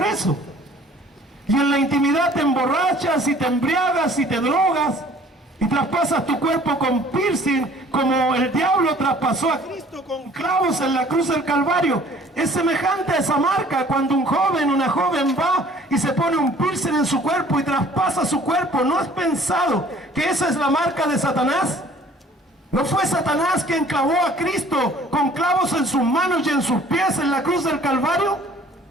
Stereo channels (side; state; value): both; normal; correlation 0.53